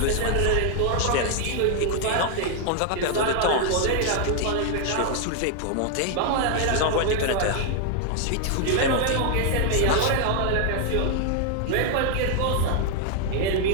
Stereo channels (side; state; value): both; different; correlation 0.00